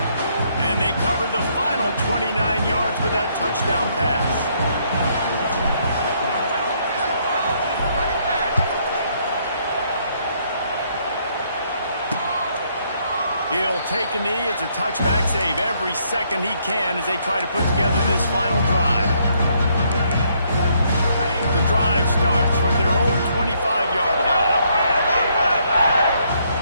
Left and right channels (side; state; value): both; inverted; correlation -0.70